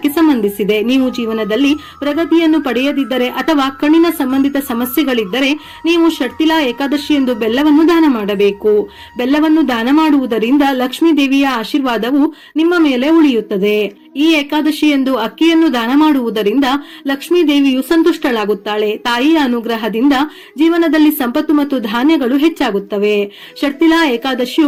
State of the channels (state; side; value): identical; both; correlation 1.00